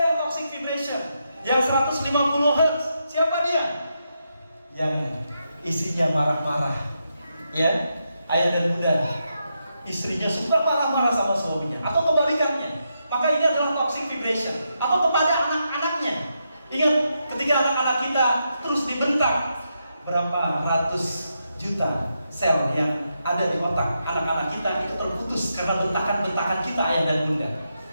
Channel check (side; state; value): both; inverted; correlation -0.83